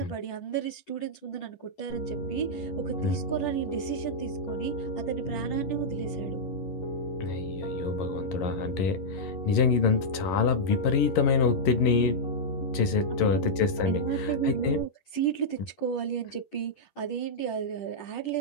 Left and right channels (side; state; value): right; late; 11 ms